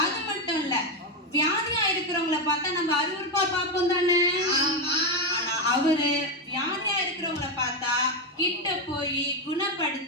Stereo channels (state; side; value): normal; both; correlation 0.08